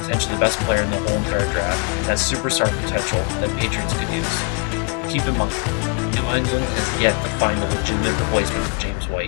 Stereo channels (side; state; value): right; quieter; 34.9 dB